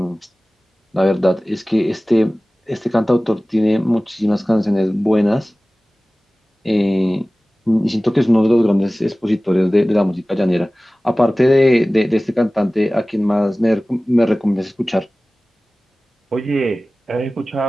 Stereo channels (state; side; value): normal; both; correlation 0.98